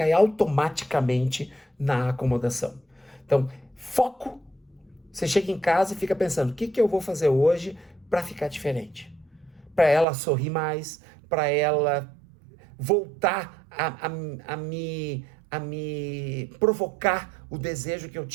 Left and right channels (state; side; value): drops out; left; at 10.1 s